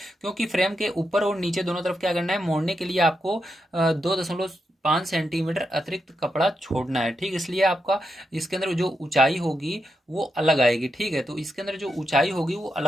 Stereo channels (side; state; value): both; normal; correlation 0.85